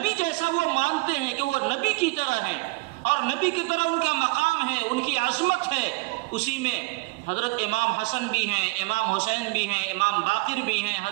جیسا وہ مانتے ہیں کہ وہ نبی کی طرح ہیں، اور نبی کی طرح ان کا مقام ہے، ان کی عظمت ہے۔ اسی میں حضرت امام حسن بھی ہیں، امام حسین بھی ہیں، امام باقر بھی ہیں،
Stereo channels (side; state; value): left; quieter; 26.0 dB